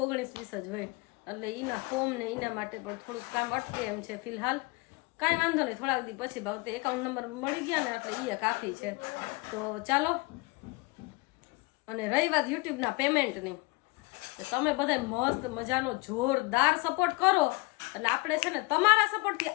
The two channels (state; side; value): quieter; right; 25.2 dB